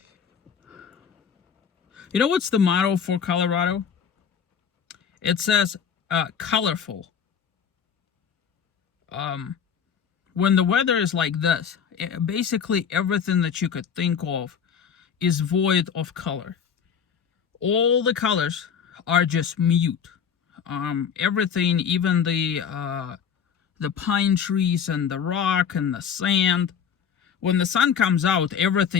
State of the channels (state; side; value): quieter; right; 7.4 dB